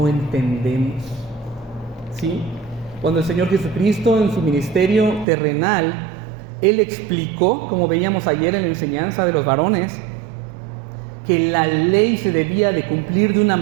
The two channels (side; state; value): left; drops out; at 5.2 s